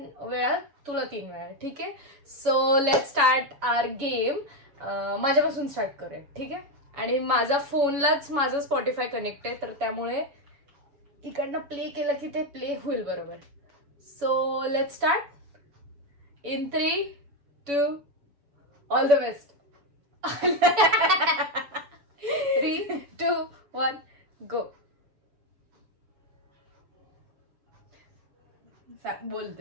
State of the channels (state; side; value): late; left; 7.0 ms